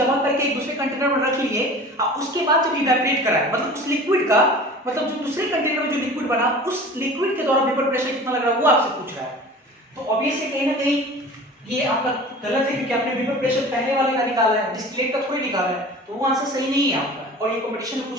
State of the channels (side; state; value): both; normal; correlation 0.40